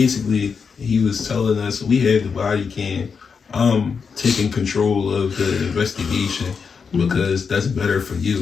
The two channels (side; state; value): right; quieter; 5.8 dB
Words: he was telling us we had the body cam. Taking control of the investigation because that's better for